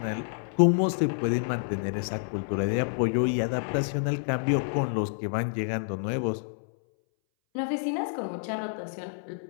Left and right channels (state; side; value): silent; right; 59 dB below the other